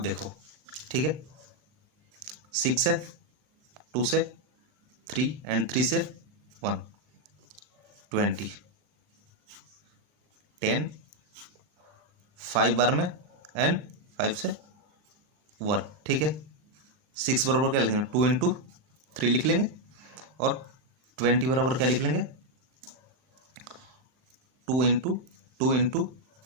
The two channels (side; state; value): left; late; 39 ms